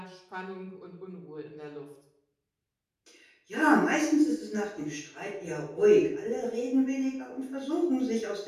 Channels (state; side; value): identical; both; correlation 1.00